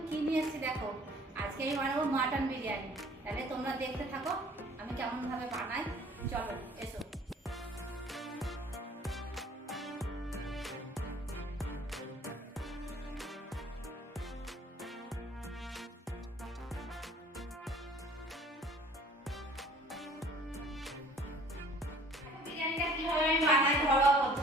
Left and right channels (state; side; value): normal; both; correlation 0.52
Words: কি নিয়ে এসেছি দেখো। আজকে আমি বানাবো মাটন বিরিয়ানি। তাহলে তোমরা দেখতে থাকো আমি কেমন ভাবে বানাই। চলো এসো। বিরিয়ানিটা কিভাবে আমি বানাই ঘরোয়া